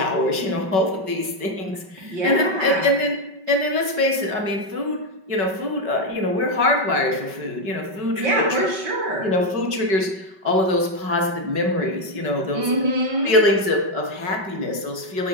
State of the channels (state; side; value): late; left; 5.2 ms